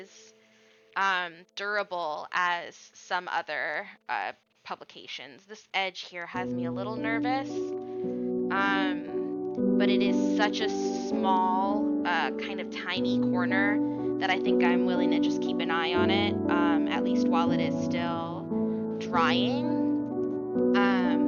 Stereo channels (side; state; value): both; identical; correlation 1.00